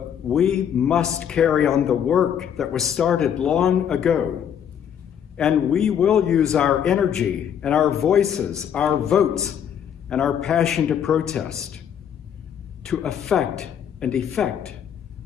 we must carry on the work that was started long ago. And we will use our energy and our voices, our votes, and our passion to protest, to affect and effect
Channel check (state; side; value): quieter; right; 8.8 dB